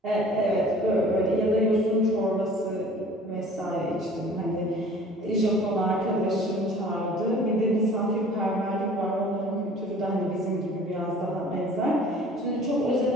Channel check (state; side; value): normal; both; correlation 0.48